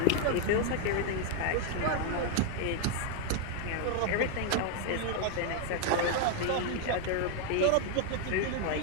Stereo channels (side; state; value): both; different; correlation 0.00